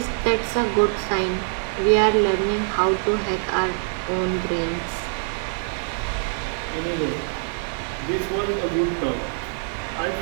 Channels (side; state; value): left; silent; 63 dB below the other